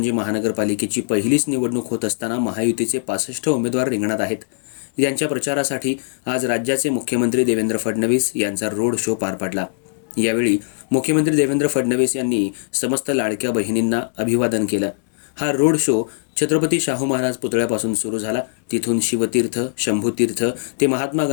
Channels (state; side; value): silent; right; digital silence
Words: महानगरपालिकेची पहिलीच निवडणूक होत असताना महायुतीचे 65 उमेदवार रिंगणात आहेत. यांच्या प्रचारासाठी आज राज्याचे मुख्यमंत्री देवेंद्र फडणवीस यांचा रोड शो पार पडला. यावेळी मुख्यमंत्री देवेंद्र फडणवीस यांनी समस्त लाडक्या बहिणींना अभिवादन केलं. हा रोड शो छत्रपती शाहू महाराज पुतळ्यापासून सुरू झाला. तिथून शिवतीर्थ, शंभूतीर्थ ते महात्मा